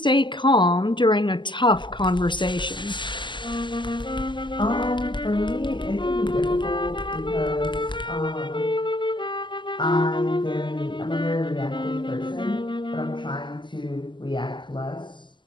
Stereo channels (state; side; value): late; right; 0.23 ms